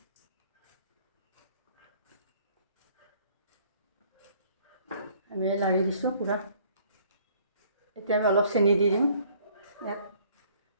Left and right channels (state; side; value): inverted; both; correlation -0.59